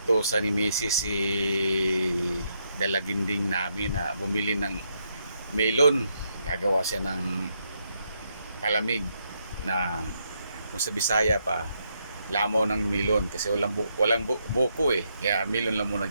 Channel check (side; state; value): both; inverted; correlation -0.78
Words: ni Mrs. si dalaginding namin na bumili ng melon. Gagawa siya ng palamig na kung sa Bisaya pa, lamaw ng melon kasi walang buko eh. Kaya melon lang muna